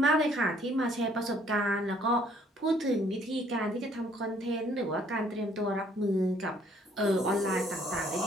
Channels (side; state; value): both; normal; correlation 0.62